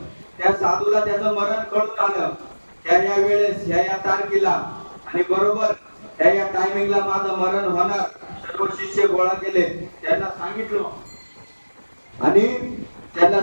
त्या साधूला त्याचं मरण कळून आलं. त्या वेळेस या तारखेला आणि बरोबर त्या टायमिंगला माझं मरण होणार. सर्व शिष्य गोळा केले. त्यांना सांगितलं आणि त्यांना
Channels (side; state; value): both; inverted; correlation -1.00